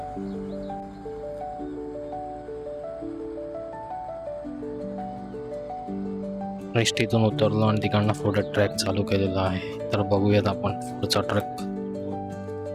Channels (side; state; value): both; identical; correlation 1.00